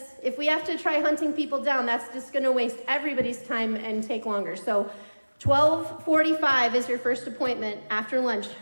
if we have to try hunting people down, that's just going to waste everybody's time and take longer. So 12:45 is your first appointment after lunch.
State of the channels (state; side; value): inverted; both; correlation -1.00